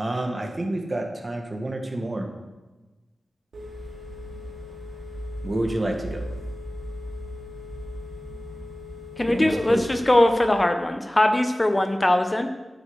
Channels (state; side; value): normal; both; correlation 0.97